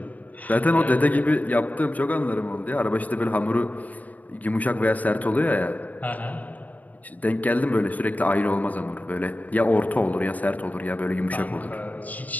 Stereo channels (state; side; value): late; right; 0.076 ms